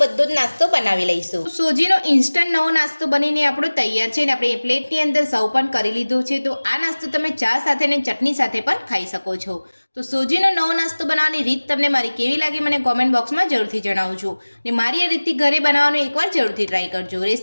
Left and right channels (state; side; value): inverted; both; correlation -1.00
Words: બધો જ નાસ્તો બનાવી લઈશું। સોજીનો ઇન્સ્ટન્ટ નવો નાસ્તો બનીને આપણો તૈયાર છે અને આપણે એ પ્લેટની અંદર સર્વ પણ કરી લીધું છે। તો આ નાસ્તો તમે ચા સાથે અને ચટણી સાથે પણ ખાઈ શકો છો। તો સોજીનો નવો નાસ્તો બનાવવાની રીત તમને મારી કેવી લાગી મને કોમેન્ટ બોક્સમાં જરૂરથી જણાવજો અને મારી આ રીતથી ઘરે બનાવવાનું એકવાર જરૂરથી ટ્રાય કરજો।